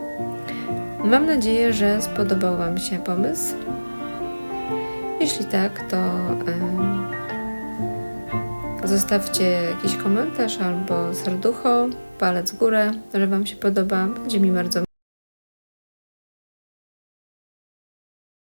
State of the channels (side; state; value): both; inverted; correlation -1.00